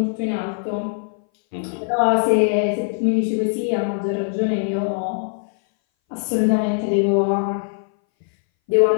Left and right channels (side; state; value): right; silent; 61 dB below the other